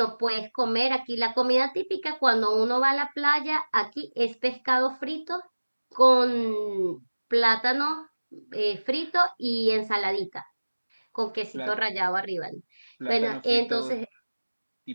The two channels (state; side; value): inverted; both; correlation -1.00